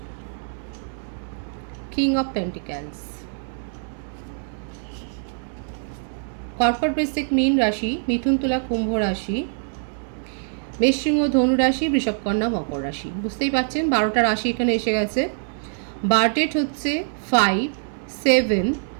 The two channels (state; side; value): silent; left; digital silence